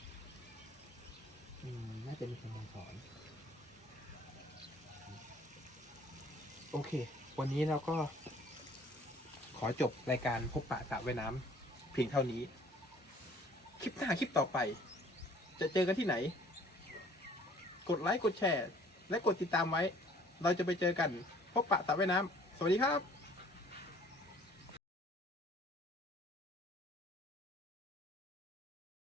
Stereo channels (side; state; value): both; normal; correlation 0.54